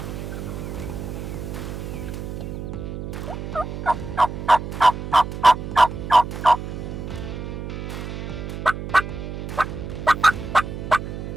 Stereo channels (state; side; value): noise; right; hum, 7 dB below the sound